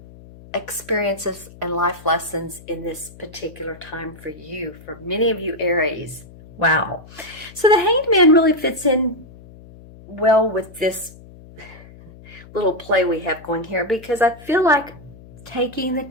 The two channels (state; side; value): noise; left; hum, 20 dB below the sound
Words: experiences and life lessons in this particular time for you, for many of you Aries. Wow. So the Hanged Man really fits in well with this little play we have going here, because I feel like taking the